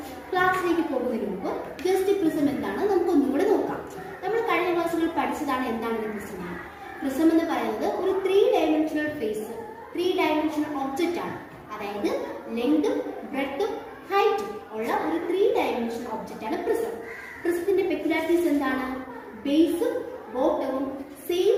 ക്ലാസ്സിലേക്ക് പോകുന്നതിന് മുമ്പ് ജസ്റ്റ് പ്രിസം എന്താണ് നമുക്ക് ഒന്നുകൂടെ നോക്കാം. നമ്മൾ കഴിഞ്ഞ ക്ലാസ്സുകളിൽ പഠിച്ചതാണ് എന്താണ് പ്രിസം. പ്രിസം എന്ന് പറയുന്നത് ഒരു 3 ഡയമെൻഷണൽ ഫേസ്, 3 ഡയമെൻഷണൽ ഒബ്ജക്റ്റ് ആണ്. അതായത് ലെങ്തും ബ്രെഡ്ത്തും ഹൈറ്റും ഉള്ള ഒരു 3 ഡയമെൻഷണൽ ഒബ്ജക്റ്റ് ആണ് പ്രിസം. പ്രിസത്തിന്റെ പെക്യുലാരിറ്റീസ് എന്താണ്? ബേസും ബോട്ടവും സെയിം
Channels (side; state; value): both; identical; correlation 1.00